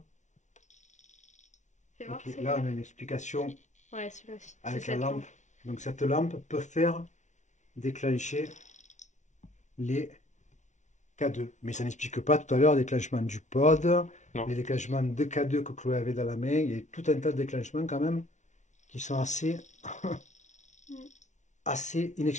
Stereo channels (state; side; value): late; right; 0.35 ms